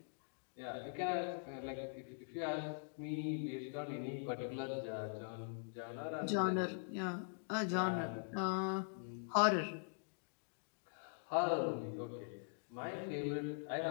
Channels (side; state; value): right; silent; digital silence